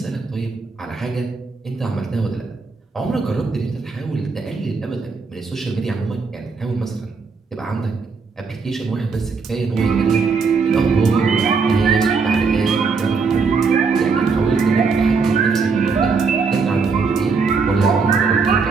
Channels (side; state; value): left; quieter; 4.8 dB